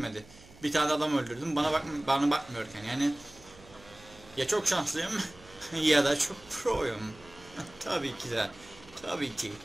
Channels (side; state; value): right; noise; hum, 22 dB below the sound